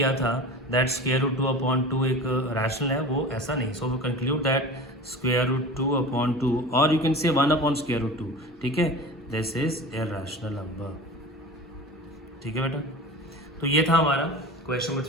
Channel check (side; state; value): both; normal; correlation 0.35